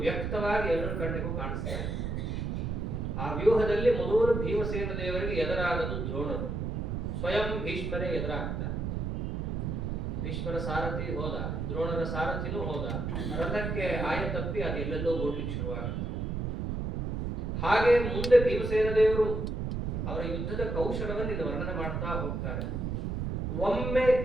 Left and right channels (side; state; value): right; noise; rumble, 2 dB below the sound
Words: ವ್ಯಕ್ತವಾಗಿ ಎಲ್ಲರ ಕಣ್ಣಿಗೂ ಕಾಣಿಸ್ತಾರೆ. ಆ ವ್ಯೂಹದಲ್ಲಿ ಮೊದಲು ಭೀಮಸೇನ ದೇವರಿಗೆ ಎದುರಾದದ್ದು ದ್ರೋಣರು. ಸ್ವಯಂ ಭೀಷ್ಮರೇ ಎದುರಾಗ್ತಾರೆ. ಭೀಷ್ಮರ ಸಾರಥಿ ಹೋದ, ದ್ರೋಣರ ಸಾರಥಿನೂ ಹೋದ. ರಥಕ್ಕೆ ಆಯ ತಪ್ಪಿ ಅದು ಎಲ್ಲೆಲ್ಲೋ ಓಡ್ಲಿಕ್ಕೆ ಶುರುವಾಗುತ್ತೆ. ಹಾಗೆ ಮುಂದೆ ಭೀಮಸೇನ ದೇವರು ಅವರ ಯುದ್ಧದ ಕೌಶಲವನ್ನು ಇಲ್ಲಿ ವರ್ಣನೆ ಮಾಡ್ತಾ ಹೋಗ್ತಾರೆ. ಒಮ್ಮೆ